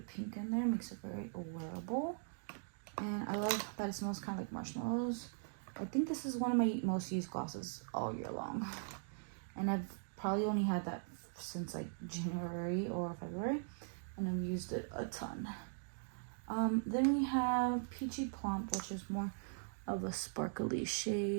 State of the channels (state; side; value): silent; left; digital silence